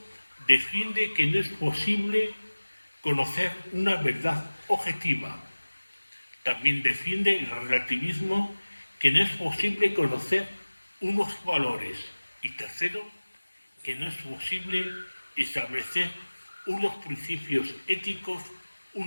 defiende que no es posible conocer una verdad objetiva. También defiende el relativismo que no es posible conocer unos valores. Y tercero, que no es posible establecer unos principios éticos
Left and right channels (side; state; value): both; inverted; correlation -1.00